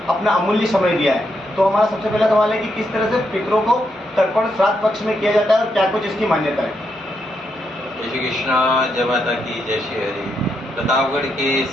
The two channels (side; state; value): both; normal; correlation 0.80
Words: अपना अमूल्य समय दिया है। तो हमारा सबसे पहला सवाल है कि किस तरह से पितरों को तर्पण श्राद्ध पक्ष में किया जाता है और क्या कुछ इसकी मान्यता है। जय श्री कृष्णा, जय माता की, जय श्री हरि। प्रतापगढ़ के